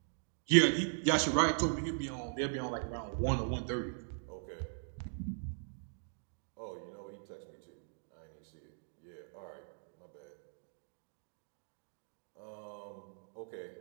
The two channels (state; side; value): silent; left; digital silence